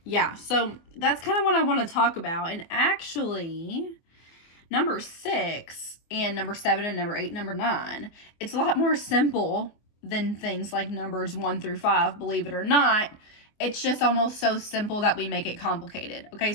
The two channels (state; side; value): late; right; 24 ms